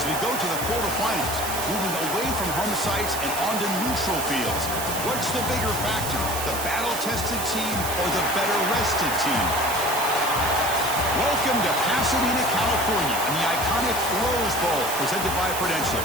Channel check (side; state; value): right; noise; hiss, 5 dB below the sound